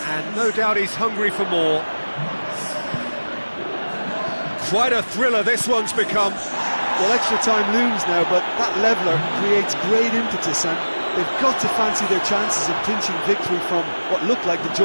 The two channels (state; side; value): inverted; both; correlation -1.00